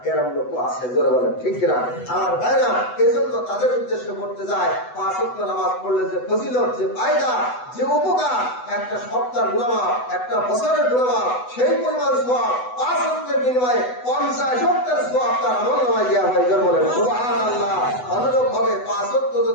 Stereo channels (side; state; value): right; late; 8.0 ms